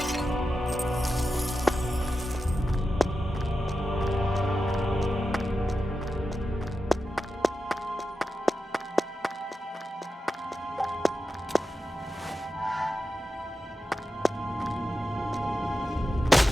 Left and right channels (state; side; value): normal; both; correlation 0.91